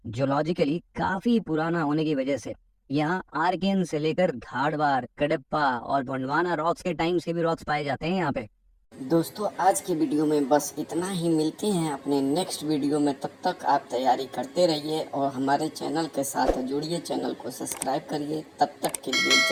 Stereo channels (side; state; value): both; identical; correlation 1.00